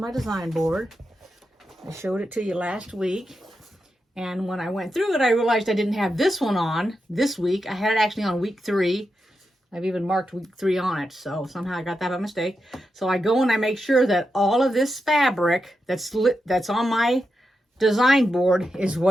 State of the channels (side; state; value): both; normal; correlation 0.88